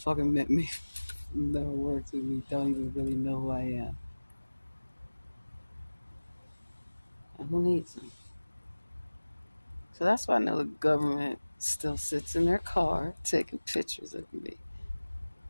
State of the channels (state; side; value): inverted; both; correlation -1.00